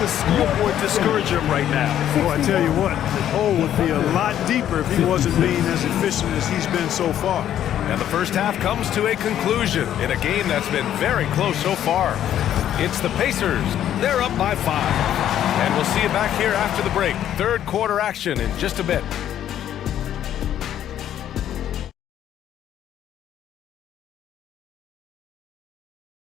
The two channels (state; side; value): quieter; right; 10.9 dB